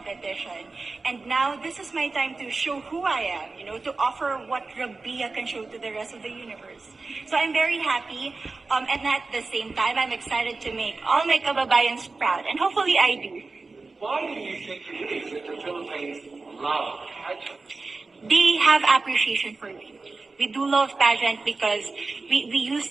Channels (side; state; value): left; quieter; 3.8 dB